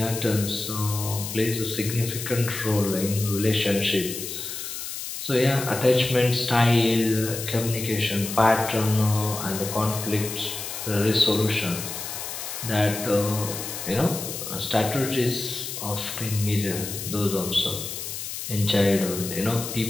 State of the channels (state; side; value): noise; left; hiss, 7 dB below the sound